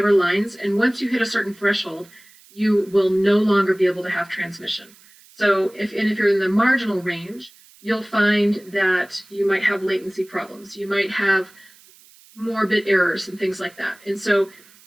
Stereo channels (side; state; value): right; noise; hiss, 26 dB below the sound